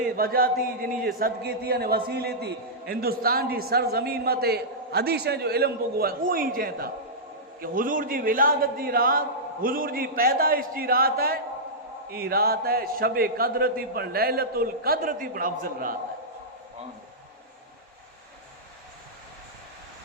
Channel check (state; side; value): normal; both; correlation -0.12